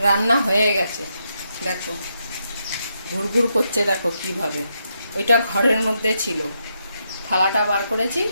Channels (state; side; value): inverted; both; correlation -0.81